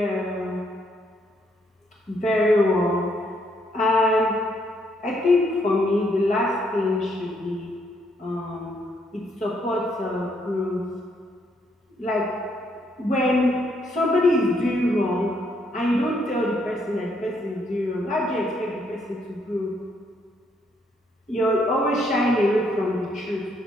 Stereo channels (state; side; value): normal; both; correlation 0.72